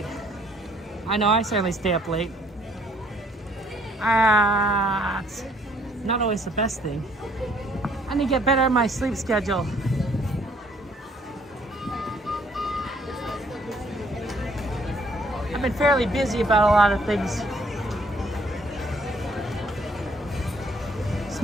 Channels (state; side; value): normal; both; correlation 0.63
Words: I know, I certainly stay up late. It's not always the best thing. I need to get better at my sleep schedule. I've been fairly busy about a lot of things.